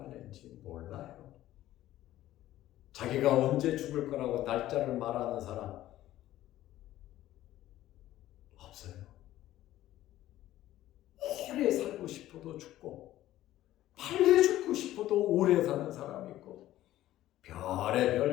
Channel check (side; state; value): right; quieter; 14.2 dB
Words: 몰라요. 자기가 언제 죽을 거라고 날짜를 말하는 사람 없어요. 오래 살고 싶어도 죽고, 빨리 죽고 싶어도 오래 사는 사람이 있고,